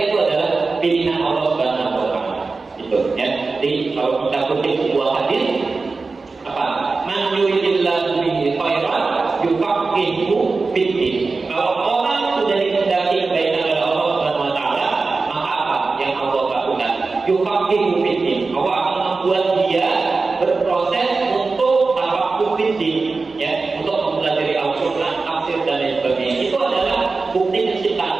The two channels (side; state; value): left; quieter; 4.0 dB